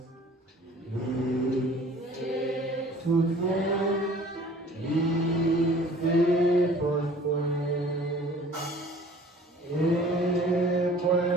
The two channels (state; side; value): normal; both; correlation 0.50